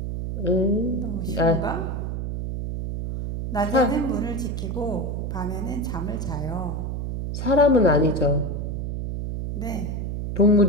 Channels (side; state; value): right; noise; hum, 3 dB below the sound